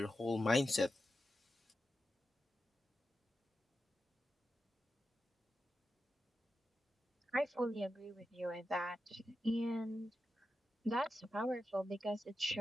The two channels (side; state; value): both; normal; correlation 0.90